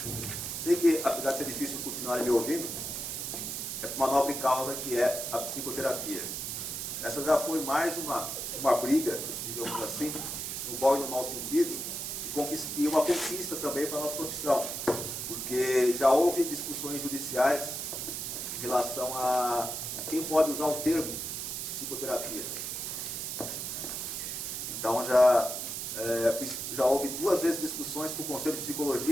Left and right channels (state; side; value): noise; right; hiss, 4 dB below the sound